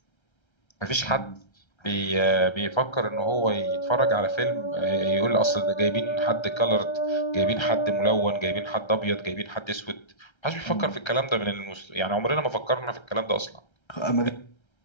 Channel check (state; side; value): late; right; 1.3 ms